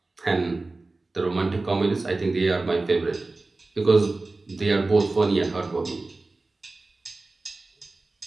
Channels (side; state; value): left; quieter; 3.3 dB